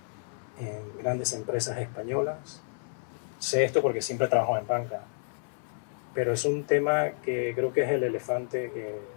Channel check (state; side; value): silent; right; 58 dB below the other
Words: en grandes empresas españolas. Sé esto porque siempre trabajo en banca, pero es un tema que creo que es el elefante que